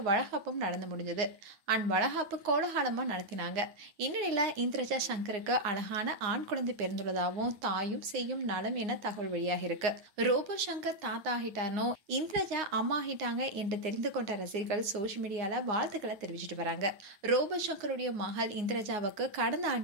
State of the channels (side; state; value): left; late; 9.5 ms